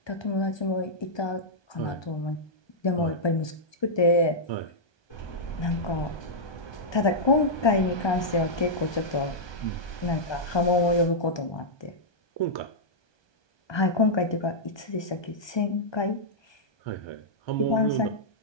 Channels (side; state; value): right; late; 1.2 ms